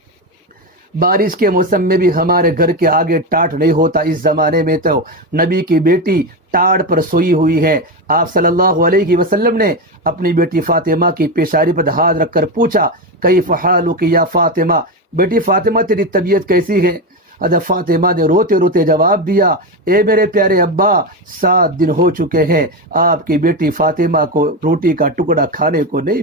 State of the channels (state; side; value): normal; both; correlation 0.14